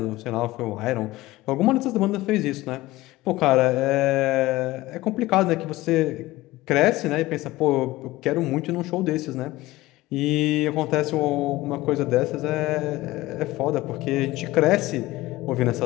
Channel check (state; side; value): quieter; right; 18.2 dB